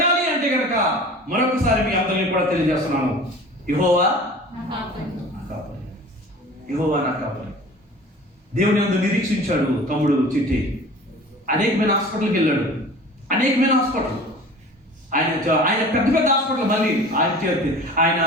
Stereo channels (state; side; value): normal; both; correlation 0.41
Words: అంటే కనుక మరొకసారి మీ అందరినీ కూడా తెలియజేస్తున్నాను, యెహోవా నా కాపరి. దేవుని యందు నిరీక్షించాడు తమ్ముడు చిట్టి. అనేకమైన హాస్పిటల్కి వెళ్ళాడు. ఆయన పెద్ద హాస్పిటల్, మళ్ళీ ఆయన